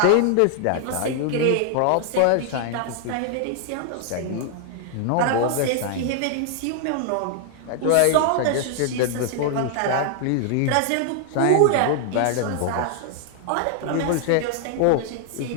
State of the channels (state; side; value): different; both; correlation 0.00